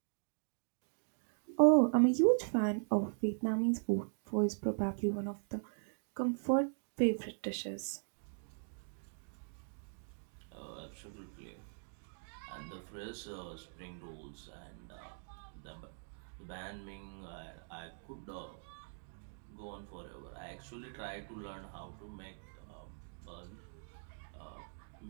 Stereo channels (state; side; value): silent; left; digital silence